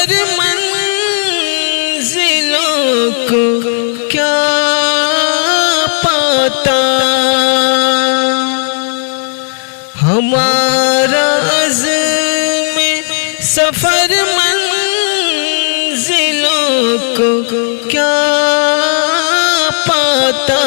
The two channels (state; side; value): silent; right; digital silence